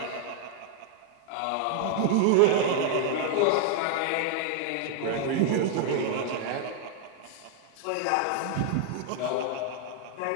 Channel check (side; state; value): both; different; correlation 0.00